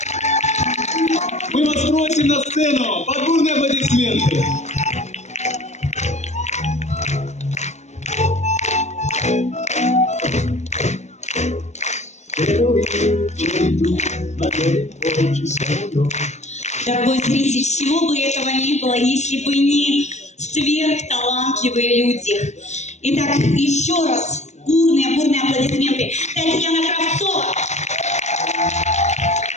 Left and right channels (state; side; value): late; right; 0.33 ms